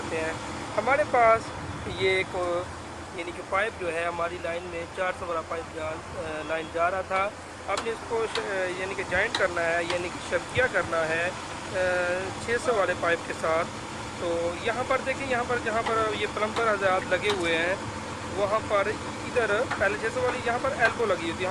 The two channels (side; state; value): both; identical; correlation 1.00